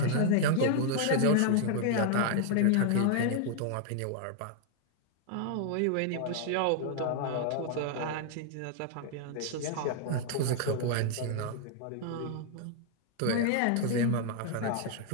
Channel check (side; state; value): both; different; correlation 0.00